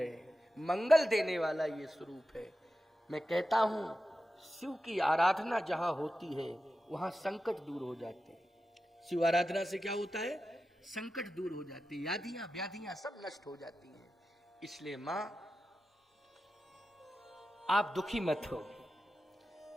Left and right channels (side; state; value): both; normal; correlation 0.92